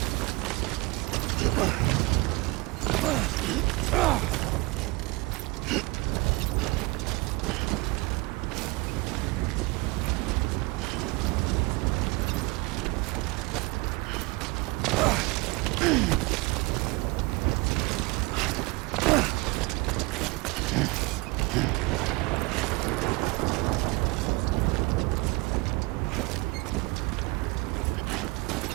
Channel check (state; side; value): quieter; left; 24.5 dB